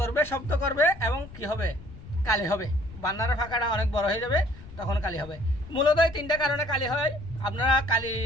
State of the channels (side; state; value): left; noise; rumble, 16 dB below the sound